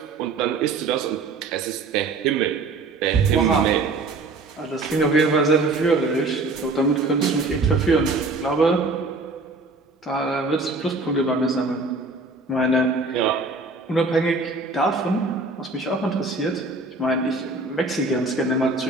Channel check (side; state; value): left; quieter; 3.4 dB